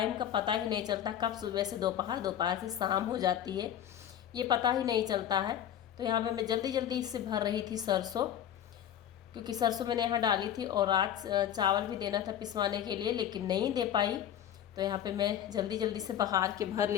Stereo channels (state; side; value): quieter; right; 10.4 dB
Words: का पता ही नहीं चलता, कब सुबह से दोपहर, दोपहर से शाम हो जाती है, ये पता ही नहीं चलता है। तो यहाँ पे मैं जल्दी जल्दी इससे भर रही थी सरसों, क्योंकि सरसों मैंने यहाँ डाली थी और आज चावल भी देना था पिसवाने के लिए, लेकिन नहीं दे पाई। तो यहाँ पे मैं जल्दी जल्दी से बहार के भर